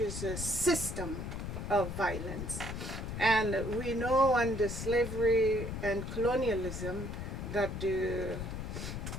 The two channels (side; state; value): left; noise; rumble, 5 dB below the sound